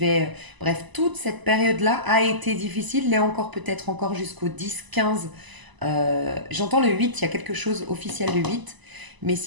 bref, toute cette période-là a été difficile, l'est encore peut-être encore jusqu'au 10-15. J'entends le 8, il y a quelque chose officiel le 8, mais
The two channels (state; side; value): late; left; 1.0 ms